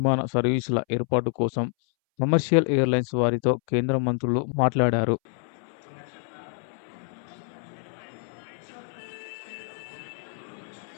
సర్వీసుల ఏర్పాటు కోసం కమర్షియల్ ఎయిర్‌లైన్స్ వారితో కేంద్ర మంత్రులు మాట్లాడారు.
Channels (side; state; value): right; silent; 60 dB below the other